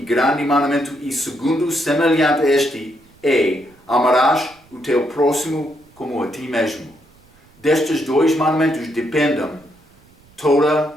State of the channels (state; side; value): noise; right; rumble, 30 dB below the sound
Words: grande mandamento, e segundo, semelhante a este, é: amarás o teu próximo como a ti mesmo. Destes dois mandamentos dependem